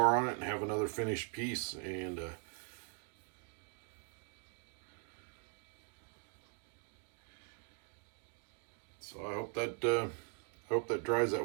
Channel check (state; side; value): quieter; left; 37.2 dB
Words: on it, and have another finished piece. And so I hope that dries that